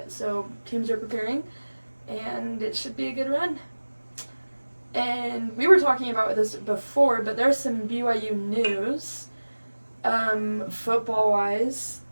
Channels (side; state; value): both; inverted; correlation -1.00